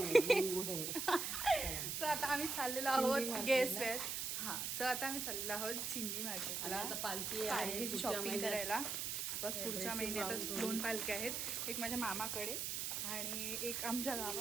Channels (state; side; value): noise; right; hiss, 2 dB below the sound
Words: आहे. सो आता आम्ही चाललेलो आहोत गेस वेअर. सो आता आम्ही चाललेलो आहोत चिंदी मार्केटला. आता पालखी शॉपिंग करायला. बस पुढच्या महिन्यात 2 पालख्या आहेत, एक माझ्या मामाकडे आणि एक आमच्या